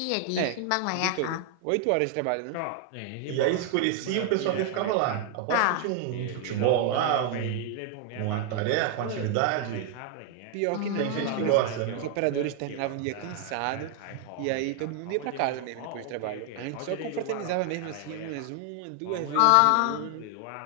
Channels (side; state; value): both; different; correlation 0.00